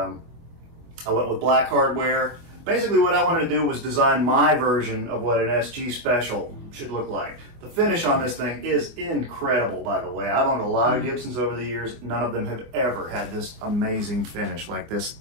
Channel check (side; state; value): left; late; 24 ms